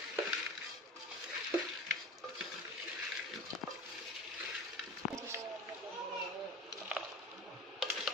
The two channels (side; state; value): both; normal; correlation 0.35